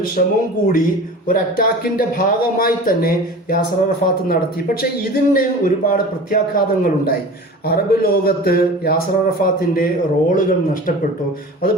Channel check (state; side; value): normal; both; correlation 0.37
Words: ശ്രമവും കൂടി ഒരു അറ്റാക്കിന്റെ ഭാഗമായി തന്നെ യാസർ അറഫാത്ത് നടത്തി. പക്ഷെ ഇതിന് ഒരുപാട് പ്രത്യാഘാതങ്ങളുണ്ടായി. അറബ് ലോകത്ത് യാസർ അറഫാത്തിന്റെ റോളുകൾ നഷ്ടപ്പെട്ടു.